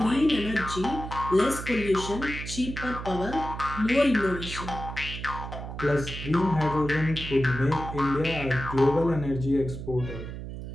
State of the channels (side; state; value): right; noise; hum, 8 dB below the sound